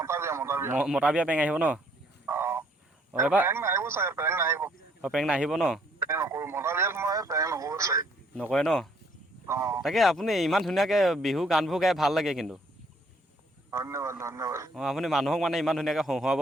মতা বিয়া প্ৰেংক আহিব ন এবাৰ প্ৰেংক নাহিব ন নকৰে ন তাকে আপুনি ইমান ধুনীয়াকৈ বিহু গানবোৰ গাই ভাল লাগে কিন্তু আপুনি মানুহক মানে ইমান ধুনীয়াকৈ হহুৱাব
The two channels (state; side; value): normal; both; correlation 0.65